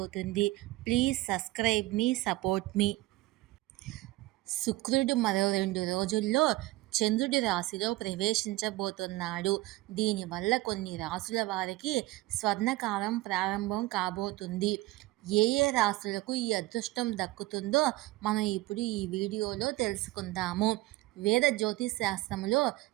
ప్లీజ్ సబ్స్క్రైబ్ మీ, సపోర్ట్ మీ. శుక్రుడు మరో 2 రోజుల్లో చంద్రుడి రాశిలో ప్రవేశించబోతున్నాడు. దీనివల్ల కొన్ని రాశుల వారికి స్వర్ణకాలం ప్రారంభం కాబోతుంది. ఏ రాశులకు ఈ అదృష్టం దక్కుతుందో మనం ఇప్పుడు ఈ వీడియోలో తెలుసుకుందాము. వేద జ్యోతిశాస్త్రంలో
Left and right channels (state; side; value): quieter; left; 19.0 dB